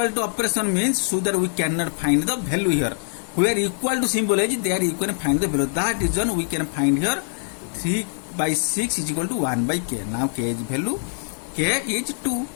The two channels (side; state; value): right; silent; 63 dB below the other